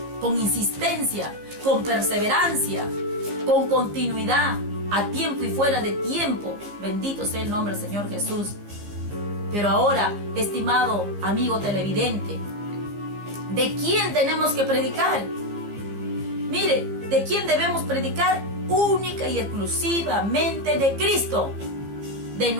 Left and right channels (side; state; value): left; late; 15 ms